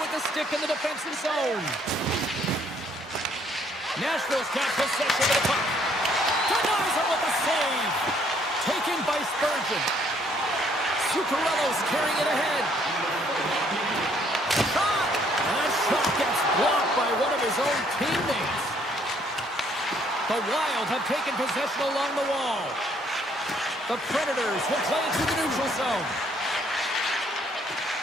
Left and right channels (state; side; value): normal; both; correlation 0.65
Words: with the stick in the defensive zone. Nashville's got possession of the puck. Denies him with the save. Taken by Spurgeon. Zuccarello's carrying it ahead. Shot! And that shot gets blocked by one of his own teammates. The Wild have taken possession along the wall. The Predators will play it through the neutral zone.